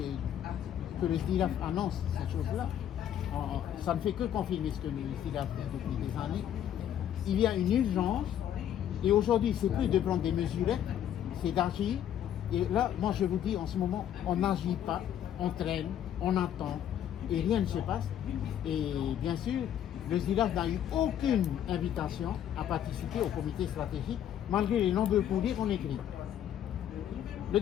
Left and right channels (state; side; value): quieter; right; 10.3 dB